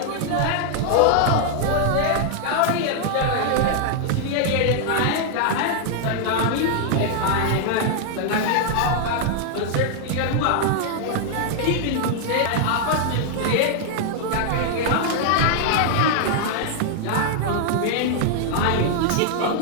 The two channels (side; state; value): both; different; correlation 0.00